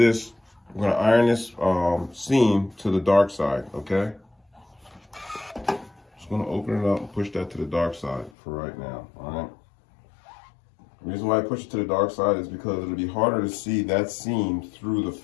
we're gonna iron this seam to the dark side, okay? Just gonna open it up and push that to the dark side for right now, all right? The reason why I push it to the dark side is because it'll be harder to see that seam through the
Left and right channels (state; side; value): drops out; right; at 8.3 s